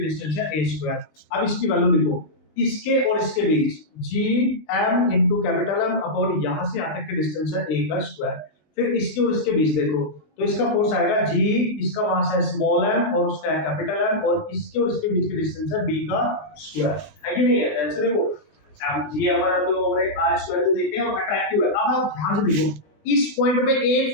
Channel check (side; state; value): right; late; 20 ms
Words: डिस्टेंस है a स्क्वायर। अब इसकी वैल्यू लिखो, इसके और इसके बीच g m into capital M upon यहां से यहां तक की डिस्टेंस है a का स्क्वायर। फिर इसके और इसके बीच देखो तो इसका फोर्स आएगा g, इसका मास है स्मॉल m और उसका है कैपिटल M, और इसके और इसके बीच की डिस्टेंस है b का स्क्वायर, है कि नहीं है। ऐसे देखो m g हमारा तो ओवर r स्क्वायर तो देखते हैं और अट्रैक्टिव है। अब आप ध्यान से देखो इस पॉइंट पे एक